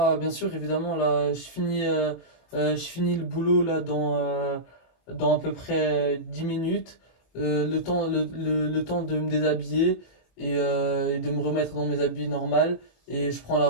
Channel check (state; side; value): late; right; 25 ms